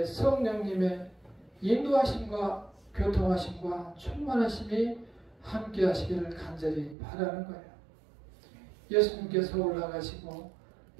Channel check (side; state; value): left; drops out; at 7.0 s